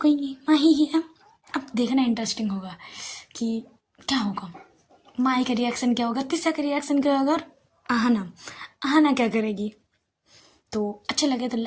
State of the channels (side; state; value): both; identical; correlation 1.00